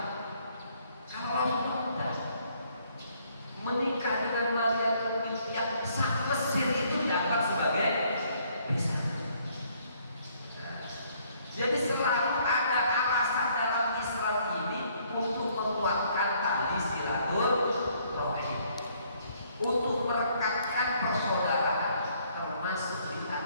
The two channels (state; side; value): inverted; both; correlation -0.65